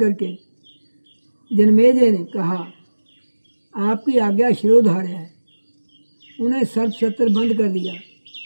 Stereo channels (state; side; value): inverted; both; correlation -1.00